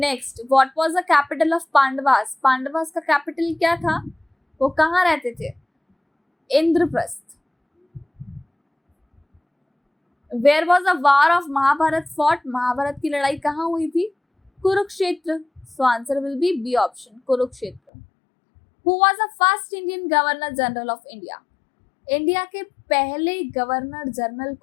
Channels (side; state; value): right; drops out; at 17.8 s